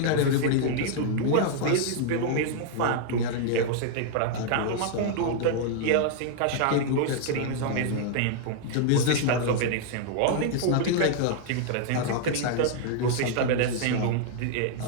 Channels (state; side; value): different; both; correlation 0.00